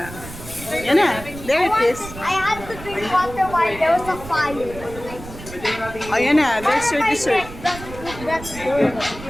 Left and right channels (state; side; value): noise; right; rumble, 14 dB below the sound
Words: Yan na, there it is. I had to drink water while there was a fire. Oh, yan na, there's your dessert. That's good.